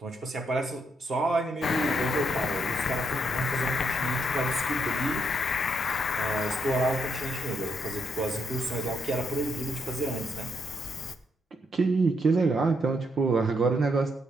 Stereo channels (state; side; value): normal; both; correlation 0.77